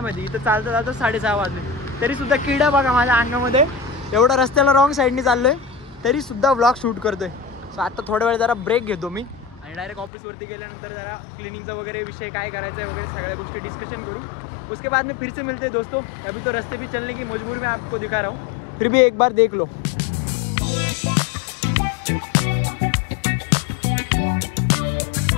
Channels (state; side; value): drops out; right; at 10.1 s